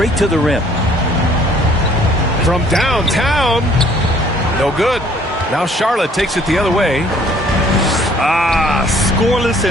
to the rim. From downtown. No good. Now Charlotte takes it the other way. Scoreless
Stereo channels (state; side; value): normal; both; correlation 0.59